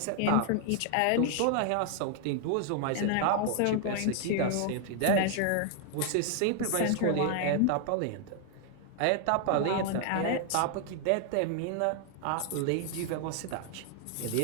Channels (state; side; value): different; both; correlation 0.00